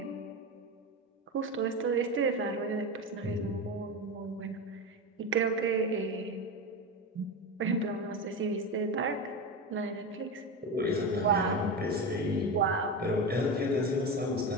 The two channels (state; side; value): normal; both; correlation 0.20